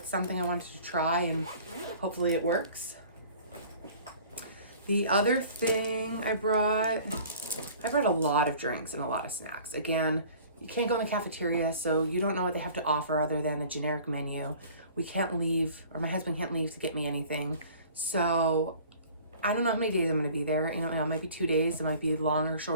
something I wanted to try, and hopefully it works. The other thing I brought a lot of drinks and a lot of snacks. Again, you can't go in the cafeteria, so you don't know what they have to offer other than a generic menu. We can't leave, or my husband can't leave to get me anything. So I don't know how many days I'm gonna be there. You know, it might be 2 days, it might be longer or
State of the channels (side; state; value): both; inverted; correlation -0.48